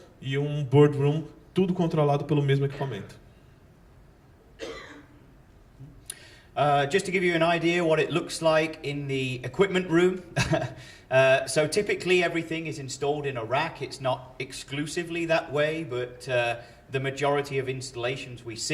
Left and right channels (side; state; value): both; identical; correlation 1.00